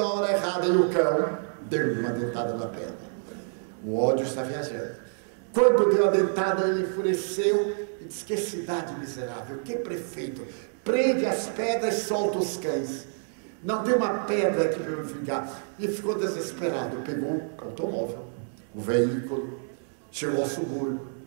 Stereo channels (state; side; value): silent; left; 60 dB below the other